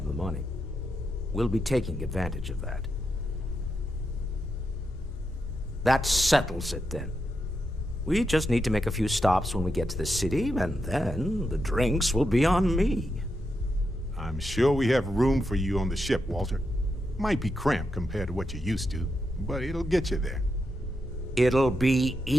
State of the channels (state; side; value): normal; both; correlation 0.85